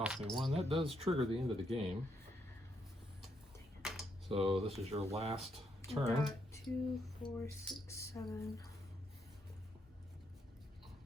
me 1. That does trigger the end of the game. So this is your last I turn. got 2, 4, 6, 7.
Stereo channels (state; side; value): normal; both; correlation 0.77